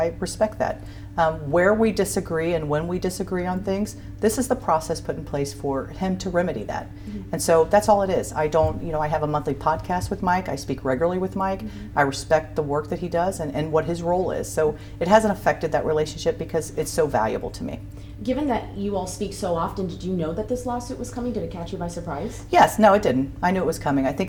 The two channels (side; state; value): both; identical; correlation 1.00